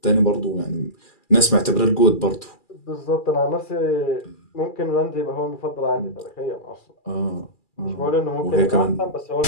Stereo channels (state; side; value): late; right; 2.4 ms